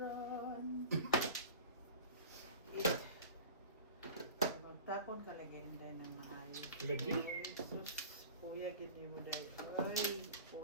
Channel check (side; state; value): both; inverted; correlation -0.38